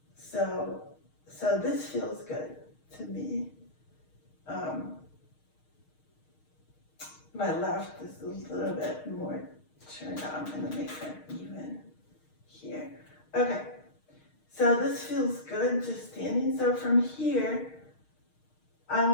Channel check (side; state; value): right; late; 6.5 ms